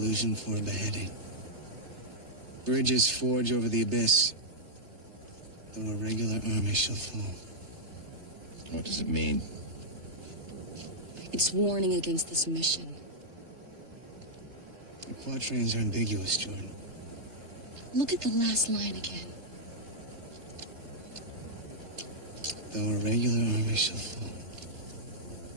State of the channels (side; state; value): left; late; 3.3 ms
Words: for a beheading. Bridges forge over the abyss, though a regular army shall fall. What does it mean? It's warning against this mission. The quatrains are ambiguous, Jordan. Look at the last line again. Though a regular army shall fall.